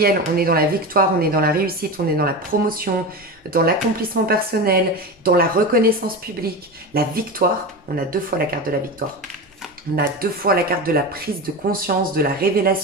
on est dans la victoire, on est dans la réussite, on est dans la promotion, dans l'accomplissement personnel, dans la reconnaissance publique, la victoire. On a 2 fois la carte de la victoire. On a 2 fois la carte de la prise de conscience, de la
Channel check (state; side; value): normal; both; correlation 0.23